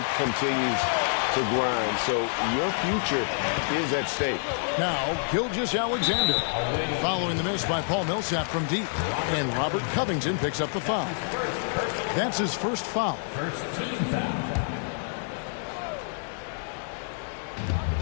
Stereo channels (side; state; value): right; silent; digital silence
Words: continues to grind. So your future is at stake. Now, Gilgeous-Alexander following the miss by Paul Millsap from deep. And Robert Covington picks up the foul. That's his first foul. First team foul.